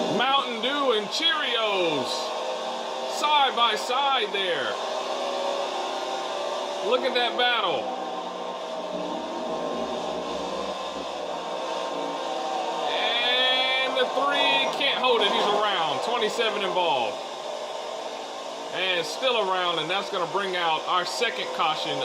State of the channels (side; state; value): both; identical; correlation 1.00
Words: Mountain Dew and Cheerios. Side by side there. Look at that battle. And the 3 can't hold it. He's around. 27 involved. And still around, and that's going to bring out our second caution